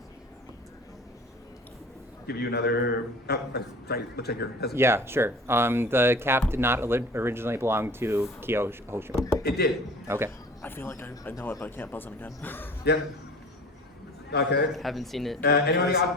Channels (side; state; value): both; normal; correlation 0.42